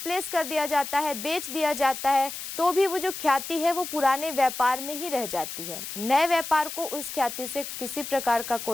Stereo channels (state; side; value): noise; left; hiss, 8 dB below the sound